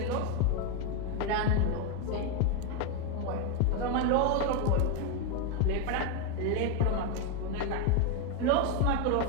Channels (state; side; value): different; both; correlation 0.02